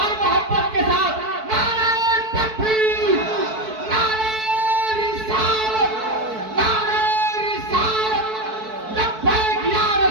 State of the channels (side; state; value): left; late; 4.6 ms